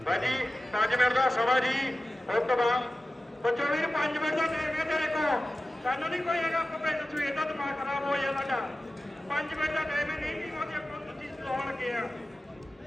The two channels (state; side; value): normal; both; correlation 0.95